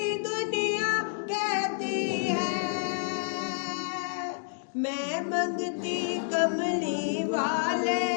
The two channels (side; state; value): right; silent; digital silence